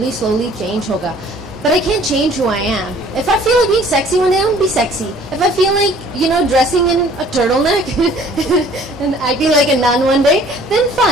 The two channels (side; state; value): both; normal; correlation 0.54